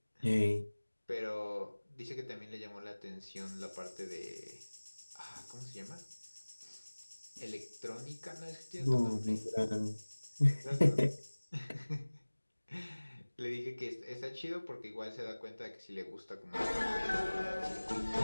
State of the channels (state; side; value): inverted; both; correlation -1.00